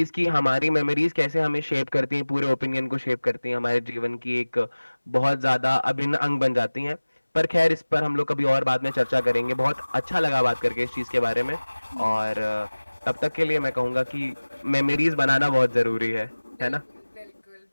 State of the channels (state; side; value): inverted; both; correlation -1.00